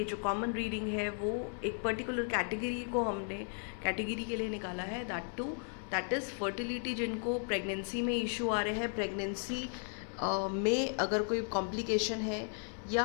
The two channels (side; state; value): right; silent; 54 dB below the other